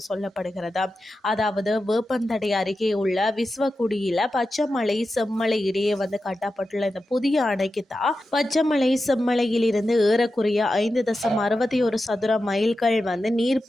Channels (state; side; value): normal; both; correlation 0.91